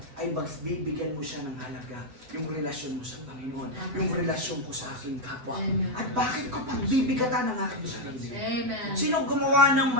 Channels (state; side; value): late; left; 8.2 ms